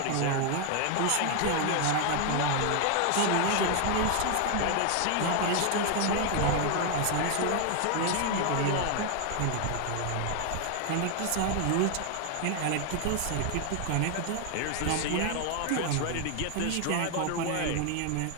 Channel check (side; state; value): both; different; correlation 0.00